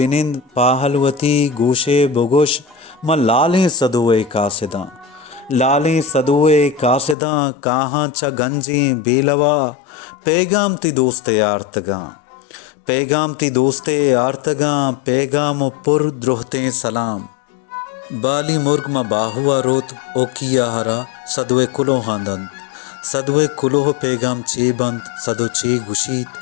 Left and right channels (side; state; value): right; drops out; at 7.2 s